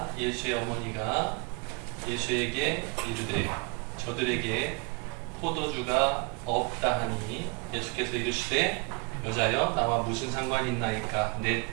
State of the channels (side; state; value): left; quieter; 31.6 dB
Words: 예수의 어머니가 예수에게 이르되 저들에게 포도주가 없다 하니 예수께서 이르시되 여자여 나와 무슨 상관이 있나이까 내